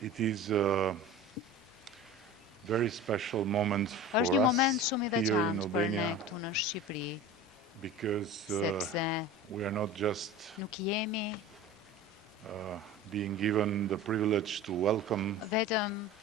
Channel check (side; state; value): both; normal; correlation 0.35